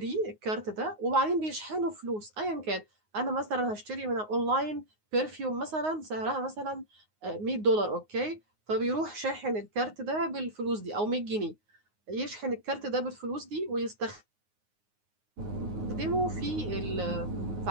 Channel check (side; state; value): left; late; 9.5 ms